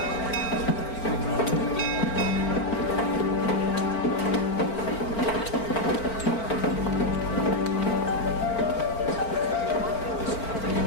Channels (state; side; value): late; right; 4.4 ms